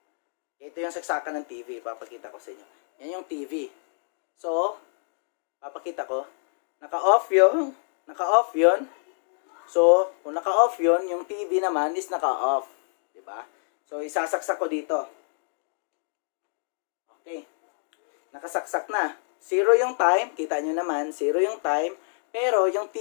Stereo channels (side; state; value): right; silent; digital silence